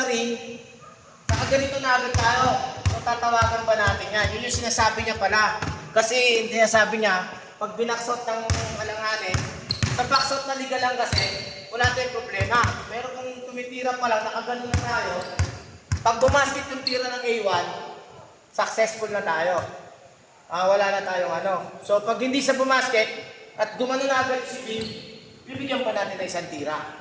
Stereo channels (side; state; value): both; identical; correlation 1.00